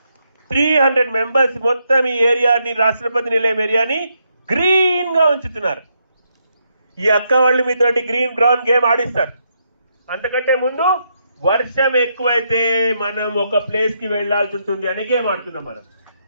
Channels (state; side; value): inverted; both; correlation -0.78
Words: 300 మెంబర్స్ మొత్తం ఈ ఏరియాని, రాష్ట్రపతి నిలయం ఏరియాని గ్రీన్ గా ఉంచుతున్నారు. ఈ అక్క వాళ్ళు మీతోటి గ్రీన్ గ్రౌండ్ గేమ్ ఆడిస్తారు. అంతకంటే ముందు వర్షం ఎక్కువైతే మనం ఒక ప్లేస్ కి వెళ్లాల్సి ఉంటుంది అనే గేమ్ ఆడుతున్నాం మనం.